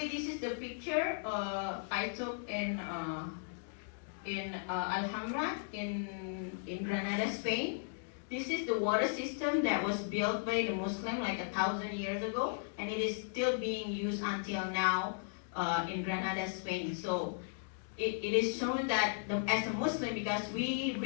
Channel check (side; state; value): right; silent; digital silence